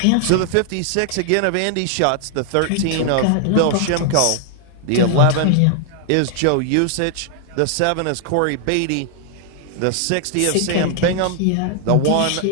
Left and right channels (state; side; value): different; both; correlation 0.00